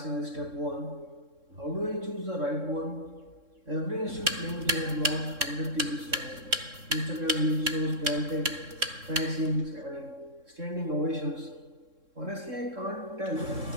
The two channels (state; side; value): late; left; 3.7 ms